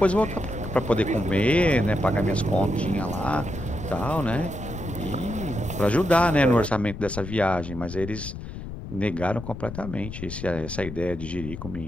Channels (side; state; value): left; noise; rumble, 9 dB below the sound